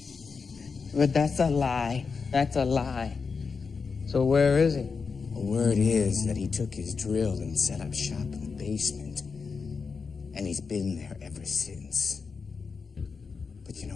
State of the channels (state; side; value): quieter; right; 5.1 dB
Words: But that's a lie. So where is he? The word is that he took his drill and set up shop in the basement. And he's been there ever since. But you know